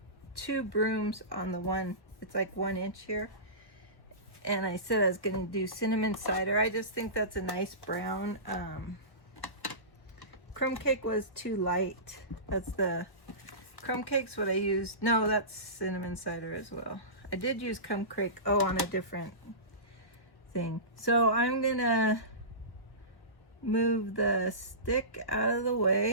2 brooms on the one, it's like 1 inch here. And I said I was gonna do cinnamon cider. I just think that's a nice brown. Crumb cake was too light. That's the, crumb cake's what I used. No, that's cinnamon cider as well. I did use crumb cake, oh, on a different thing. So I'm gonna move the stick out of the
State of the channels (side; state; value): right; late; 1.3 ms